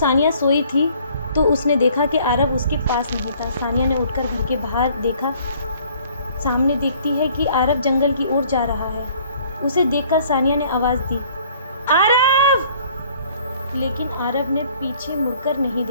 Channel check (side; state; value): both; inverted; correlation -0.57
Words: सोई थी, तो उसने देखा कि आरव उसके पास नहीं था। सानिया ने उठकर घर के बाहर देखा। सामने देखती है कि आरव जंगल की ओर जा रहा है। उसे देखकर सानिया ने आवाज़ दी, आरव! लेकिन आरव ने पीछे मुड़कर नहीं